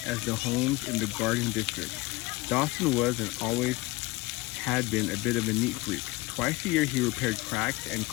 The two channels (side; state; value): right; quieter; 21.8 dB